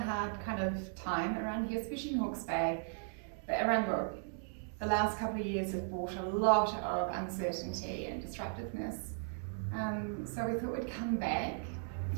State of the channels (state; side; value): silent; left; digital silence